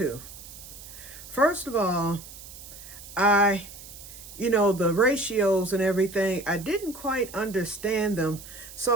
First of all, the ratios and everything, I didn't quite understand them.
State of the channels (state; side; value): noise; right; hiss, 16 dB below the sound